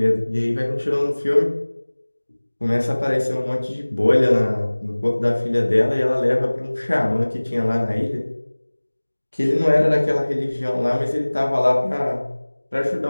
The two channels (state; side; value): inverted; both; correlation -1.00